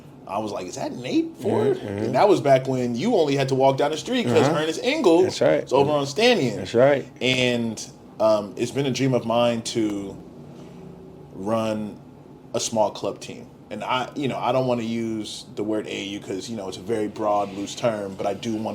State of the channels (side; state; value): both; identical; correlation 1.00